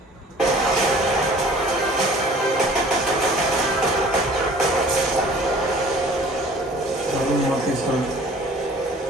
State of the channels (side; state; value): both; normal; correlation 0.49